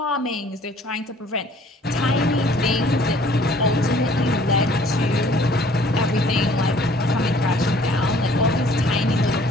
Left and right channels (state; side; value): normal; both; correlation 0.56